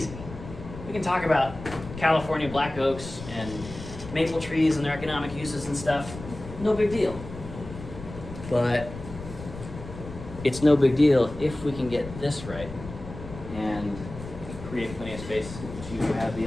We can talk about California black oaks and maple trees and their economic uses and stuff. No big deal. But it's no big deal if we can get this right and create plenty of space to have the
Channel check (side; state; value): left; noise; rumble, 12 dB below the sound